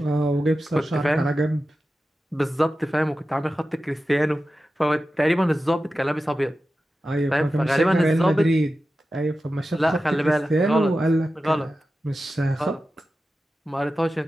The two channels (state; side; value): normal; both; correlation 0.93